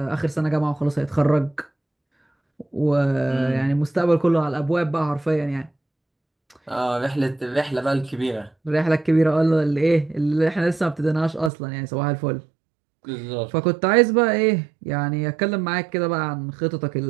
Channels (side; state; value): left; drops out; at 11.5 s